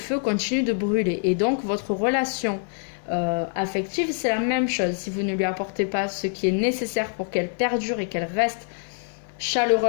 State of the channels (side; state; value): right; silent; 58 dB below the other